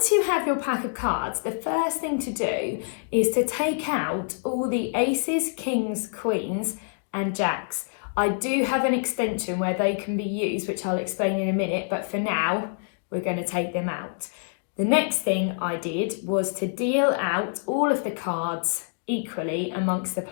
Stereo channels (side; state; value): right; silent; digital silence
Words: you have your pack of cards, the first thing to do is to take out all the aces, kings, queens and jacks. I do have an extension where they can be used, which I'll explain in a minute, but for now, we're going to take them out. The next thing I did was to deal out all of the cards equally amongst the